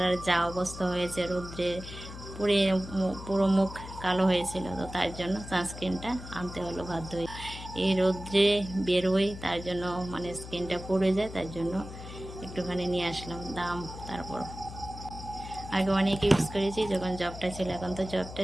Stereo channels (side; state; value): left; noise; hum, 12 dB below the sound